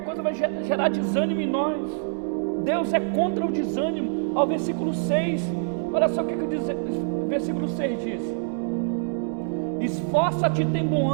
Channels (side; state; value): left; silent; digital silence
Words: coisa vai gerar desânimo em nós. Deus é contra o desânimo. Ao versículo 6, olha só o que o versículo 6 diz: esforça-te e tem bom